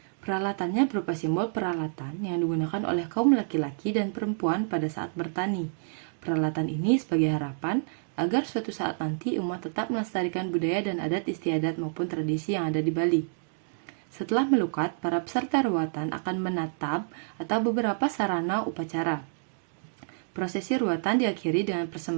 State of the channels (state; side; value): silent; left; digital silence